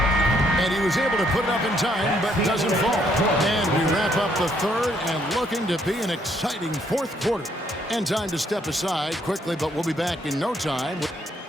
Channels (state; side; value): normal; both; correlation 0.70